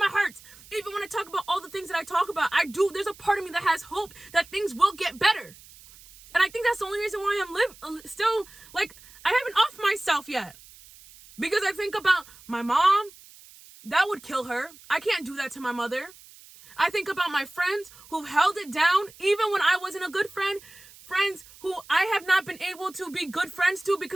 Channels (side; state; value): right; noise; hiss, 22 dB below the sound